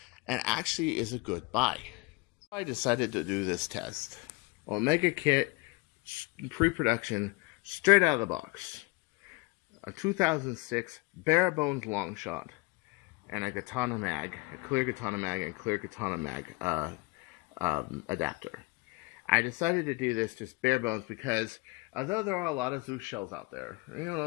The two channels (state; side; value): quieter; right; 24.7 dB